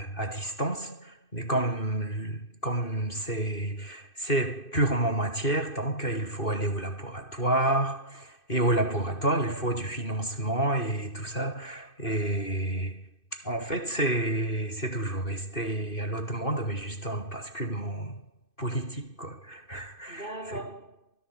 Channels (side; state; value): right; late; 2.6 ms